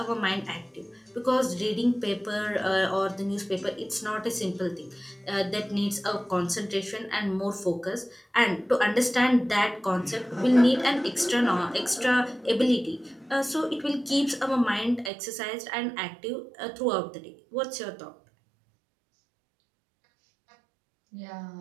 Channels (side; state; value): left; drops out; at 15.1 s